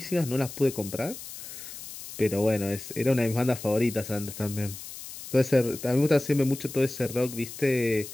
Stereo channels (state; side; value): noise; left; hiss, 12 dB below the sound